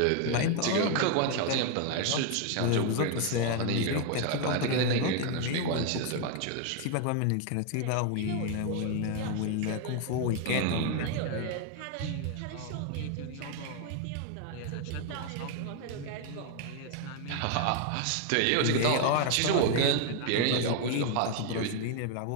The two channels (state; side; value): different; both; correlation 0.00